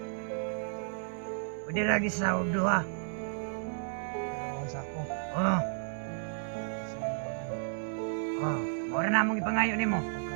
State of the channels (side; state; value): left; silent; 56 dB below the other